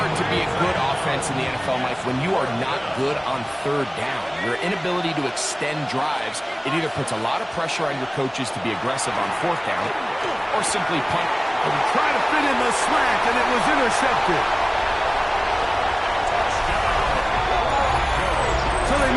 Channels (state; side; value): identical; both; correlation 1.00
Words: to be a good offense in the NFL, Mike, when you are not good on third down. Your inability to extend drives, it either puts a lot of pressure on your coaches to be aggressive on fourth down or simply punt. And try to fit in the slant, and it was intercepted. So they